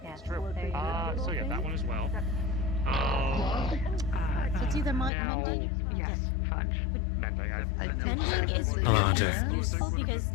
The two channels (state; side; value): drops out; right; at 5.1 s